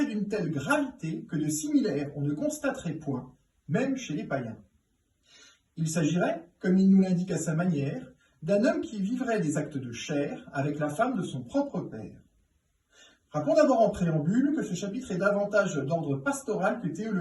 d'une telle gravité que de similaire on ne constaterait point, même chez les païens. Il s'agirait, comme il nous l'indique à sa manière, d'un homme qui vivrait des actes de chair avec la femme de son propre père. Rappelons d'abord en préambule que ce chapitre est davantage d'ordre pastoral que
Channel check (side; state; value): both; identical; correlation 1.00